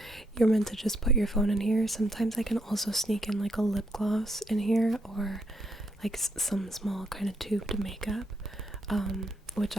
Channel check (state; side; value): normal; both; correlation 0.76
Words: you're meant to just put your phone in here, sometimes I can also sneak in like a lip gloss in here, or like some small kind of tubed makeup, which